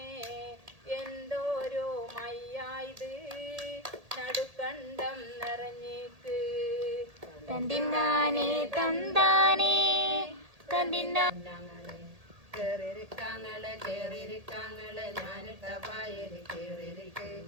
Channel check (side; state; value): left; late; 1.8 ms